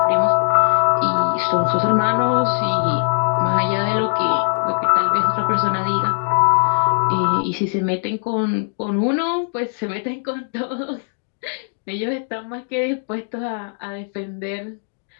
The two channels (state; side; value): silent; right; digital silence